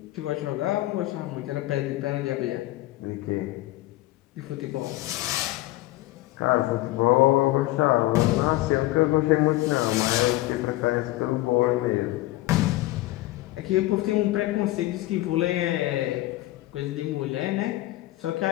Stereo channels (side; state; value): right; quieter; 17.5 dB